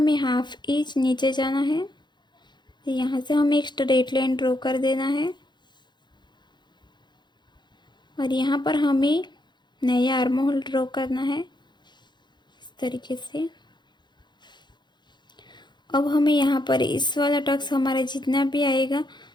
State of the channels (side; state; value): right; late; 0.21 ms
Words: 1/2 इंच नीचे जाना है। तो यहाँ से हमें एक स्ट्रेट लाइन ड्रॉ कर देना है और यहाँ पर हमें नया आर्म होल ड्रॉ करना है इस तरीके से। अब हमें यहाँ पर इस वाला टक्स हमारा जितना भी आएगा